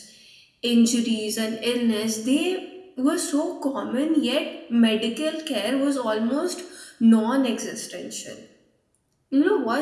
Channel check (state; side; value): identical; both; correlation 1.00